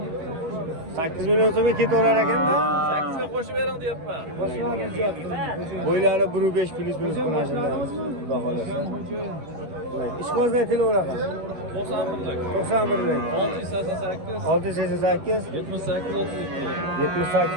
8 million so'mga ketaverar ekanda. 8 ga qo'shib bering deyapman. Bo'ylari 1.5 plus minus qilashimiz. Xudo xolasa. Ishqozda aytilaveradi. 91lik. 688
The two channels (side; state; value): left; late; 12 ms